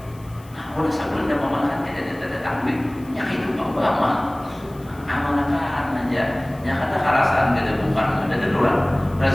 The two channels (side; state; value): left; noise; hiss, 26 dB below the sound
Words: nah udah sebelum dia mamalakan tidak tanggung ya itu bama amalkan aja ya kata karasan kada bukan ada darurat